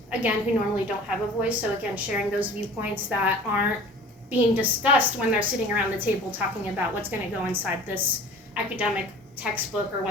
again, who normally don't have a voice. So again, sharing those viewpoints that aren't being discussed when they're sitting around the table talking about what's going to go inside this academic textbook or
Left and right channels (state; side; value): normal; both; correlation 0.44